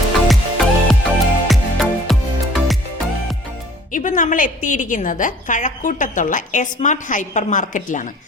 ഇപ്പം നമ്മൾ എത്തിയിരിക്കുന്നത് കഴക്കൂട്ടത്തുള്ള സ്മാർട്ട് ഹൈപ്പർ മാർക്കറ്റിലാണ്.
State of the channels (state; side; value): normal; both; correlation 0.52